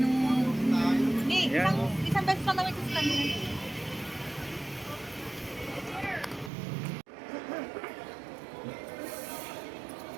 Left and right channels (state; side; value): drops out; left; at 6.5 s